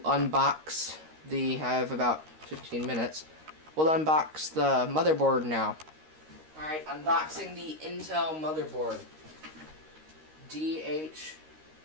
the, I have about 15 minutes. We'll unbox the motherboard now. Alright, unboxing the Intel motherboard.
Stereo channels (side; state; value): left; late; 13 ms